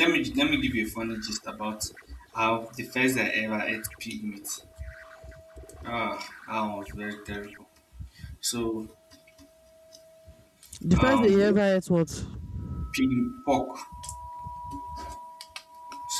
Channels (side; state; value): both; identical; correlation 1.00